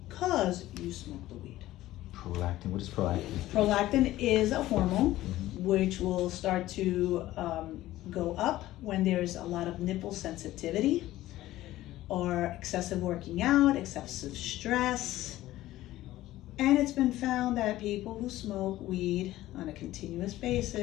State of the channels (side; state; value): right; quieter; 15.5 dB